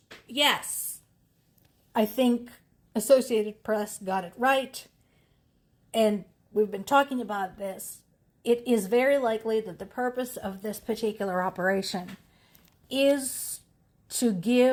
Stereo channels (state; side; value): identical; both; correlation 1.00